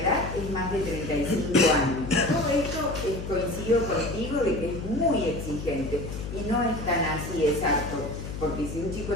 es más de 35 años. Todo esto coincido contigo de que es muy exigente y no es tan así exacto, porque si un chico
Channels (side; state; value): left; noise; hum, 7 dB below the sound